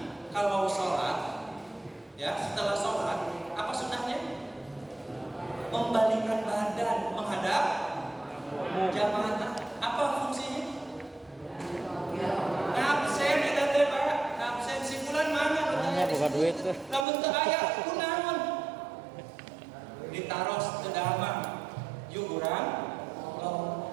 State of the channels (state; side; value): drops out; left; at 17.1 s